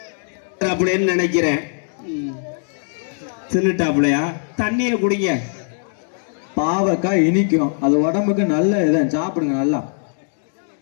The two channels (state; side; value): silent; right; digital silence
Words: அப்படின்னு நினைக்கிறேன். தின்னுட்டாப்லையா? தண்ணியை குடிங்க. பாவக்காய் இனிக்கும், அது உடம்புக்கு நல்ல இதான், சாப்பிடுங்க நல்லா.